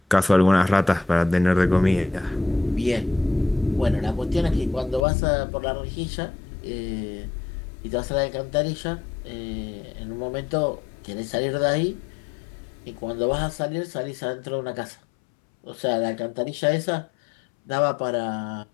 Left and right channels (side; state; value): right; drops out; at 5.1 s